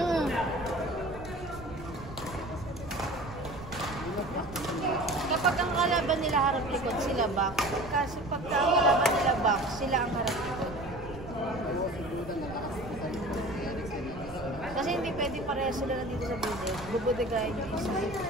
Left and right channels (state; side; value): noise; right; rumble, 13 dB below the sound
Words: Kapag ang kalaban nila harap likod, sila back. Kasi pagka ang kalaban nila back, sila ang harap likod. Kasi hindi pwede pareha sila nandito sa bude. Bubudegayin yung isa.